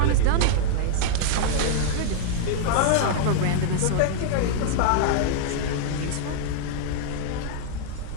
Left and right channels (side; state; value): both; different; correlation -0.01